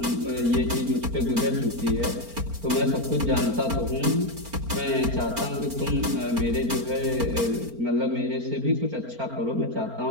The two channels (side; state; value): left; late; 4.4 ms